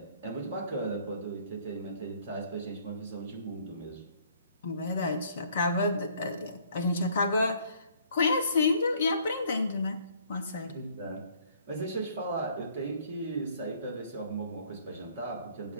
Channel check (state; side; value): inverted; both; correlation -0.60